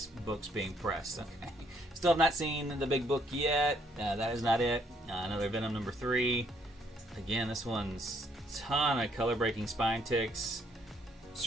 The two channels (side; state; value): both; normal; correlation 0.69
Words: books being pressed. Okay, still have not seen the big book yet. That is not it. Another Venom number 3. Again, this one's ton of color breaking spine ticks.